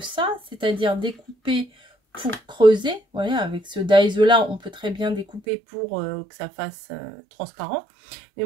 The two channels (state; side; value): drops out; left; at 5.4 s